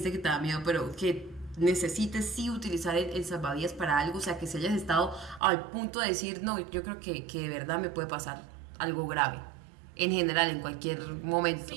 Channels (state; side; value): drops out; left; at 5.4 s